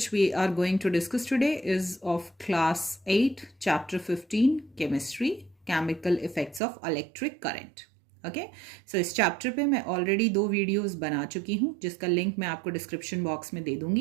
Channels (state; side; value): drops out; left; at 6.6 s